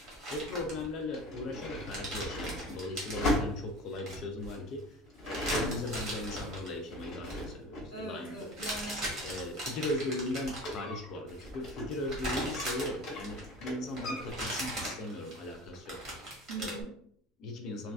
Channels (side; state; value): both; normal; correlation 0.38